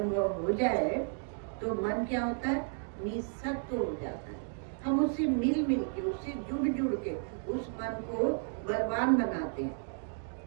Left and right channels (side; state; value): left; silent; 56 dB below the other